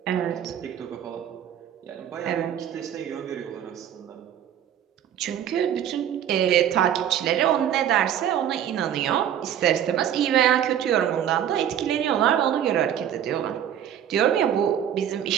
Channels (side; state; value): left; quieter; 10.0 dB